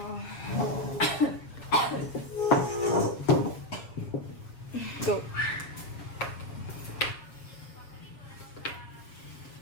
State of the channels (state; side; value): late; right; 7.3 ms